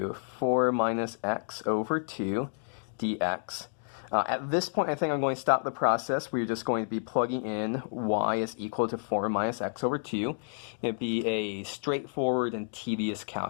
4 minus x over 2 dx. At this point, I think I'm going to stop the process. We're just going to be plugging in y is equal to 4 minus x over 2. It'd be a straightforward and tedious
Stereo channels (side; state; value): right; silent; digital silence